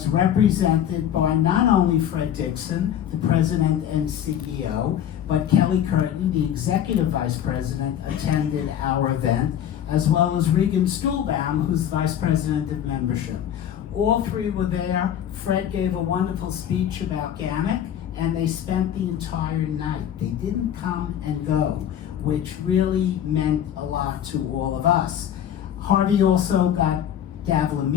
represented by not only Fred Dixon, the president and CEO, but Kelly Curtin, the executive vice president, attended our event, as well as Regan Stuhlbaum, who's vice president of membership. All 3 were there. Fred gave a wonderful speech about GANYC, and they spent the entire night. They didn't come and go, which really meant a lot to all of us. Harvey also got Davila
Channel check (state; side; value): quieter; right; 10.0 dB